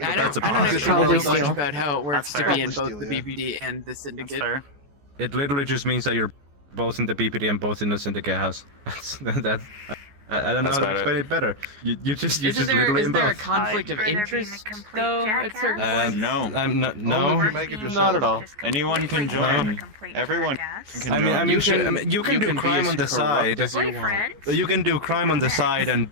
That's don't a have this probably world much doesn't- about how it works That's to fair. be in Probably both the still, yeah. BPD and the That's Syndicate. fair. It literally just means that you're both in the BPD and both in the Syndicate house. That's I don't know That's how to about explain it better. You just Isn't literally in there a both. conflict of Better being a interest, complete though, at certain jackass? points? No. I'm not. Only No. if you make it yourself. Not at all. Anyone can join. Everyone can join. I mean, you can do be crime as on the corrupt side. as you want. Boyfriend? You can do crime on the side and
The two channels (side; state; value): left; late; 14 ms